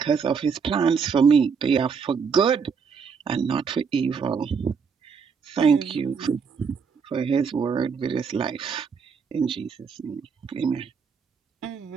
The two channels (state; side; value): quieter; left; 6.0 dB